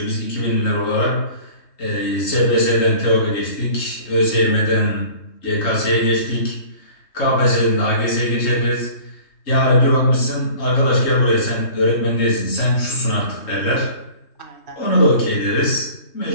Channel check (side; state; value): right; late; 3.2 ms